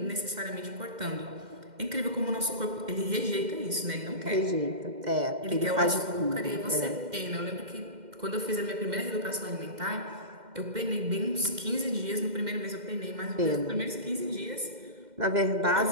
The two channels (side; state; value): left; late; 2.1 ms